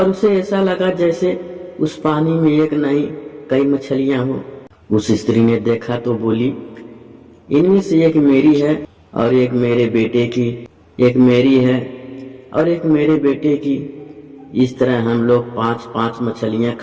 उसे ऐसा लगा जैसे उस पानी में एक नहीं कई मछलियां हो। उस स्त्री ने देखा तो बोली, इनमें से एक मेरी है और एक मेरे बेटे की, एक मेरी है और एक मेरे बेटे की। इस तरह हम लोग 5-5 मछलियां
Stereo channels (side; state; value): both; identical; correlation 1.00